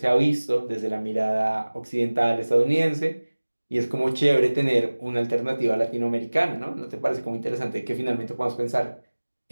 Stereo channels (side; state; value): both; inverted; correlation -1.00